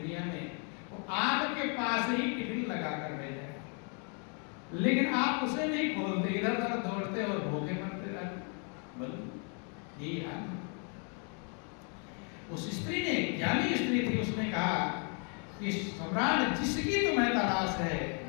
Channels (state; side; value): quieter; right; 39.3 dB